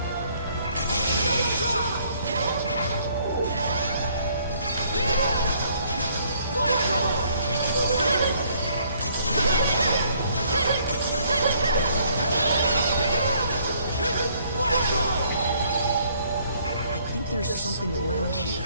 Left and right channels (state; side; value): inverted; both; correlation -0.64